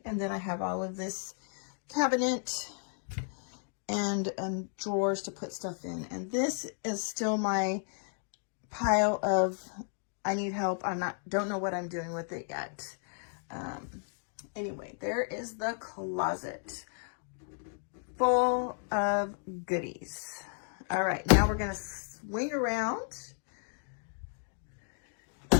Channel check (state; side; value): silent; right; 55 dB below the other